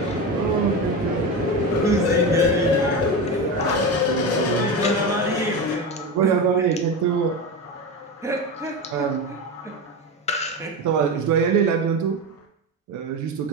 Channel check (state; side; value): normal; both; correlation 0.20